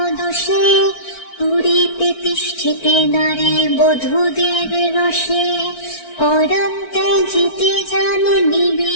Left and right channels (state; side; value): late; right; 4.5 ms